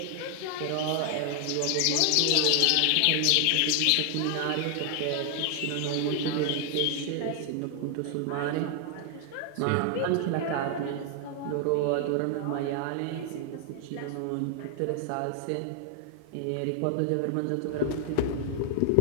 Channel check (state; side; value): different; both; correlation 0.00